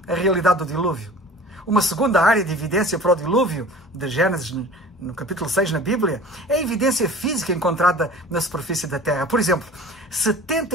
a realidade do dilúvio. Uma segunda área de evidência para o dilúvio, de Gênesis, no capítulo 6 na Bíblia, é a evidência física encontrada na superfície da Terra. Por exemplo,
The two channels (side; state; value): both; normal; correlation 0.42